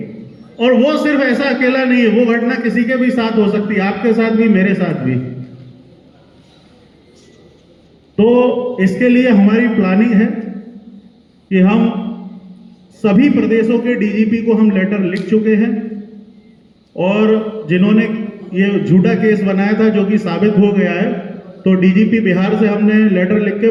और वो सिर्फ ऐसा अकेला नहीं है, वो घटना किसी के भी साथ हो सकती है, आपके साथ भी, मेरे साथ भी। तो इसके लिए हमारी प्लानिंग है कि हम सभी प्रदेशों के DGP को हम लेटर लिख चुके हैं, और जिन्होंने ये झूठा केस बनाया था जो कि साबित हो गया है, तो DGP बिहार से हमने लेटर लिख के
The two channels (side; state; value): both; identical; correlation 1.00